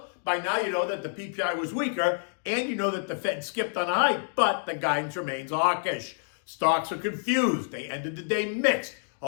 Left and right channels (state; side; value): silent; right; digital silence